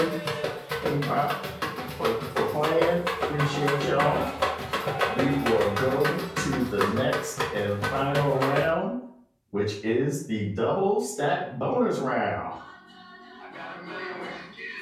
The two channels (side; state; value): both; identical; correlation 1.00